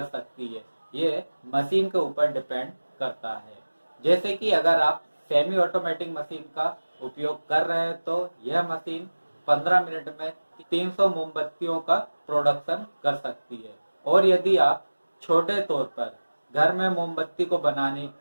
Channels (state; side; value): inverted; both; correlation -1.00